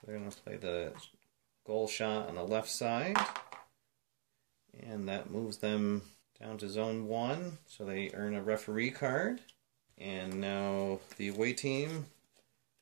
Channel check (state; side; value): silent; left; digital silence